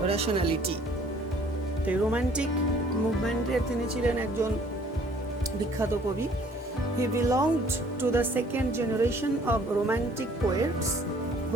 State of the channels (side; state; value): both; normal; correlation 0.57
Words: rationality. The romantic movement তিনি ছিলেন একজন বিখ্যাত কবি। He belonged to the second generation of romantic poets